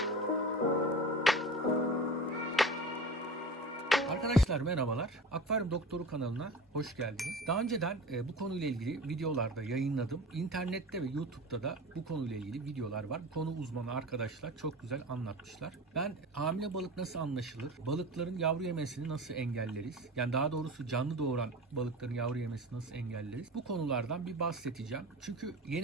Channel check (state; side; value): normal; both; correlation 0.33